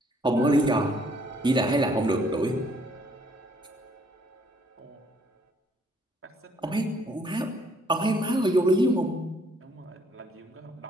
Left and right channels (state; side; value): normal; both; correlation 0.65